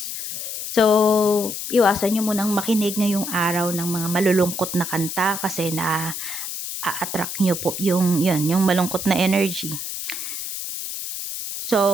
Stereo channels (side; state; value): left; noise; hiss, 6 dB below the sound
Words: So, iwasan nyo munang makinig ngayong araw ng mga malulungkot na kanta kasi a-attract nyo po yung malungkot na energy.